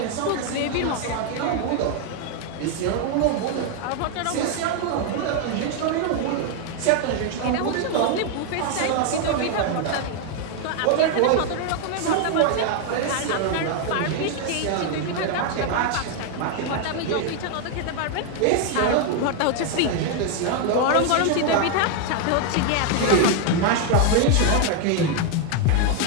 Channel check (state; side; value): different; both; correlation 0.01